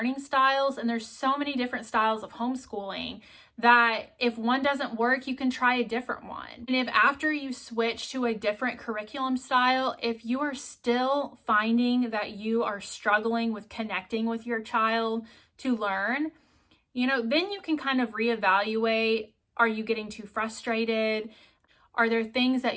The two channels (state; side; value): identical; both; correlation 1.00